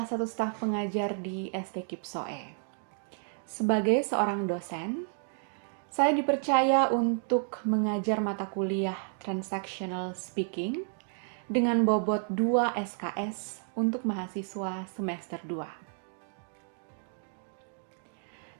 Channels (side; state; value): left; silent; 57 dB below the other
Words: satu staf pengajar di ST Kipsoe. Sebagai seorang dosen, saya dipercaya untuk mengajar mata kuliah Transactional Speaking dengan bobot 2 SKS untuk mahasiswa semester